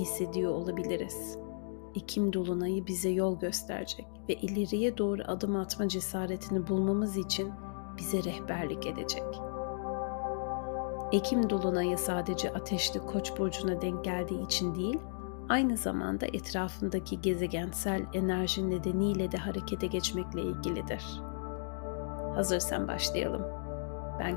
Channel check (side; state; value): right; silent; digital silence